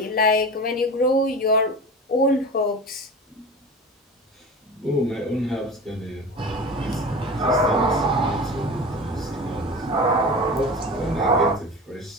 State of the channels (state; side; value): normal; both; correlation 0.32